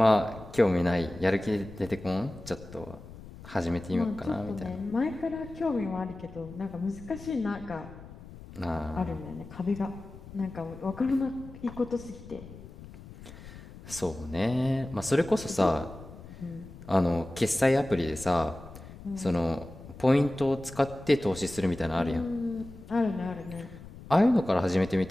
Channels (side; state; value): left; noise; rumble, 16 dB below the sound